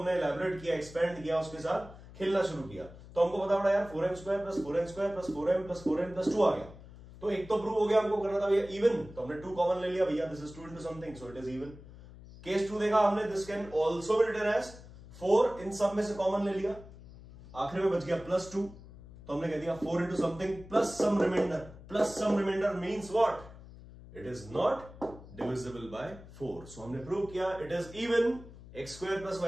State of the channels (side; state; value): left; noise; hum, 18 dB below the sound